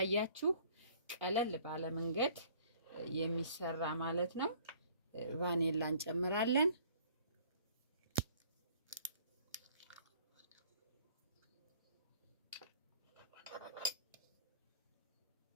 ቀለል ባለ መንገድ የሚሰራ ማለት ነው። ቫኒላ እንጨምራለን።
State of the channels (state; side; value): inverted; both; correlation -0.55